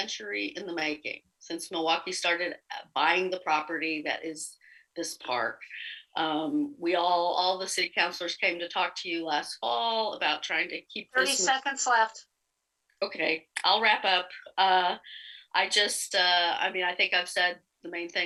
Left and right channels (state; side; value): identical; both; correlation 1.00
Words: in the making since Milwaukee started buying the property that is this park. All the city councilors came to talk to you last fall about trying to keep 30 seconds left. Okay, I'll wrap up. I think I've said the main